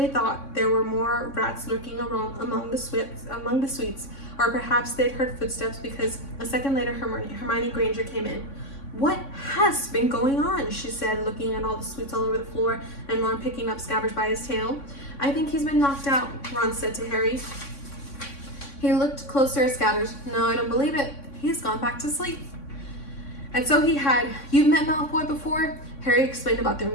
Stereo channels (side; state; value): right; late; 3.6 ms